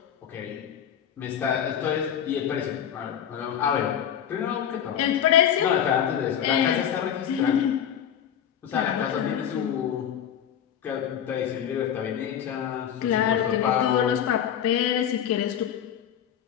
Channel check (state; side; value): quieter; right; 9.3 dB